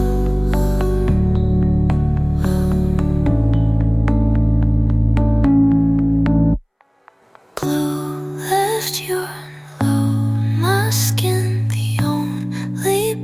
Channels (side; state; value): both; identical; correlation 1.00